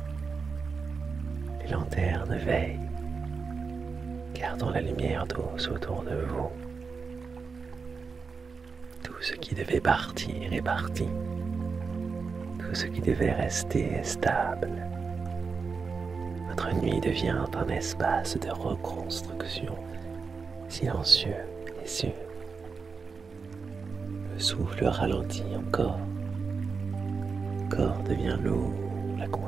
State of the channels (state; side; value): quieter; left; 5.0 dB